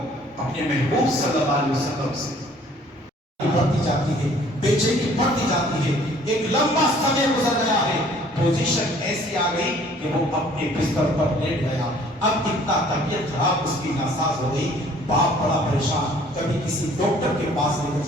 اپنے محبوب صلی اللہ علیہ وسلم سے. بڑھتی جاتی ہے، بے چینی بڑھتی جاتی ہے. ایک لمبا سمے گزر گیا ہے، پوزیشن ایسی آ گئی کہ وہ اپنے بستر پر لیٹ گیا. اب اتنا طبیعت خراب اس کی ناساز ہو گئی. باپ بڑا پریشان، کبھی کسی ڈاکٹر کے پاس لے کر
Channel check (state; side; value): normal; both; correlation 0.56